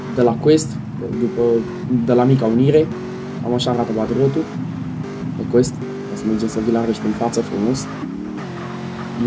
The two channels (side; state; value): both; identical; correlation 1.00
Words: de la Quest. De la Mica Unire. Am așa arată Patriotul. De Quest. O să mergem să vi-l arăt în față frumos.